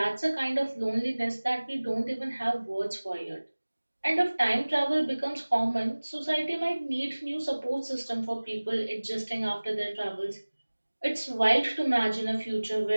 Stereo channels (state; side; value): inverted; both; correlation -1.00